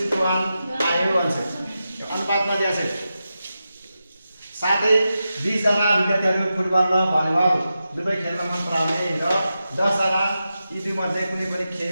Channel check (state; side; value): inverted; both; correlation -0.90